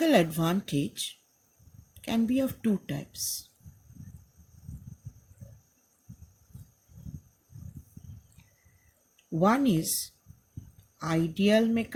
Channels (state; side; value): identical; both; correlation 1.00